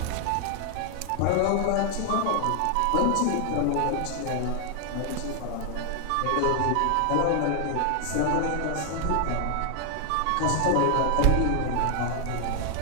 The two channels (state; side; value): different; both; correlation 0.00